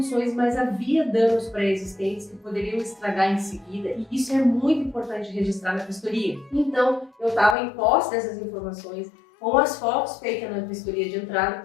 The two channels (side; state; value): right; drops out; at 7.6 s